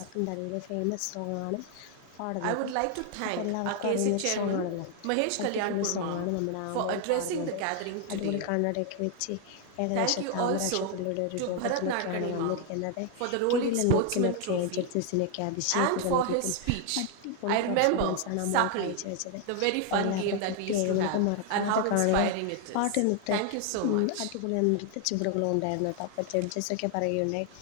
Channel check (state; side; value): different; both; correlation 0.00